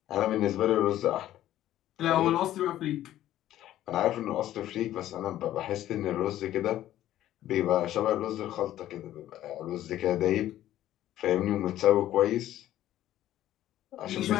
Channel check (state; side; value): quieter; right; 13.1 dB